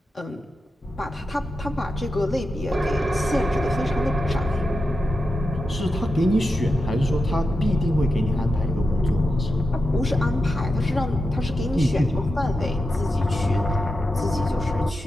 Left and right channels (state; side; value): normal; both; correlation 0.89